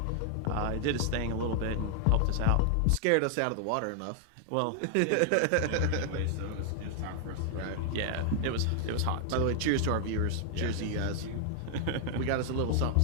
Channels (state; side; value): different; both; correlation 0.00